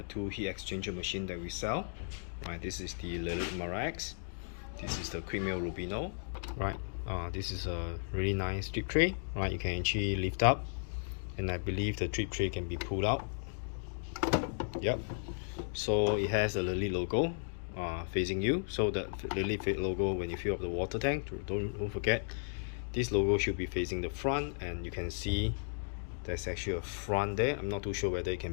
two heat exchanger machine that we sell. Right, this is the Lelit MaraX, This is the quick Mill Rubino, right? This is a really nice drip tray, right? You can actually lift up, and I believe the drip tray can be pulled out. Yep. So it has a Lelit logo facing you. So the Lelit logo, when you fill up the water tank, don't forget, this logo should be facing the front, and you can see there's actually a front there. I'm not too sure whether it can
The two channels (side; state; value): right; silent; digital silence